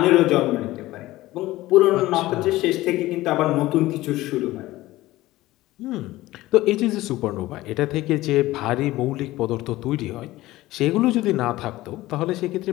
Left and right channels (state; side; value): quieter; right; 17.3 dB